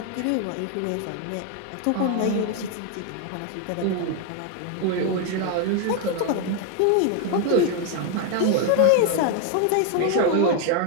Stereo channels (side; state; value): both; different; correlation 0.01